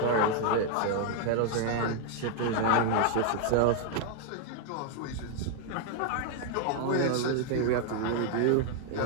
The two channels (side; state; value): both; different; correlation 0.00